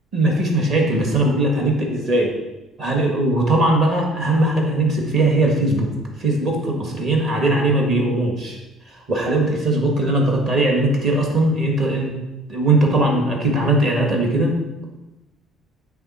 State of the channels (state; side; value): normal; both; correlation 0.50